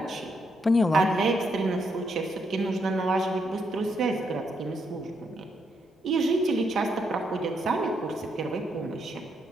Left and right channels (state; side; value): normal; both; correlation 0.77